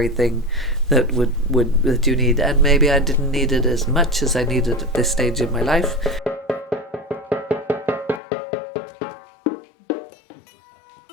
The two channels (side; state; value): right; drops out; at 8.2 s